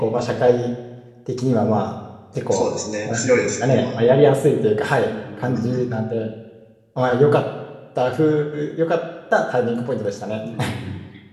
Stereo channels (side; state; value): both; identical; correlation 1.00